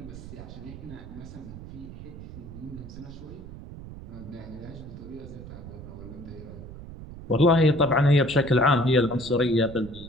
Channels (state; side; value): noise; right; rumble, 13 dB below the sound